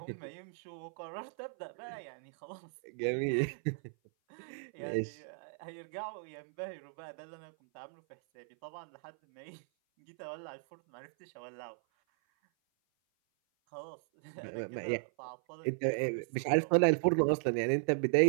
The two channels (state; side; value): silent; left; 53 dB below the other